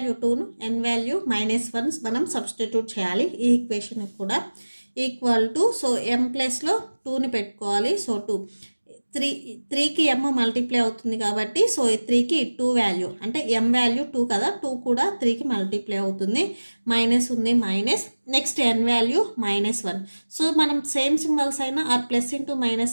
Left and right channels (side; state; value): both; inverted; correlation -1.00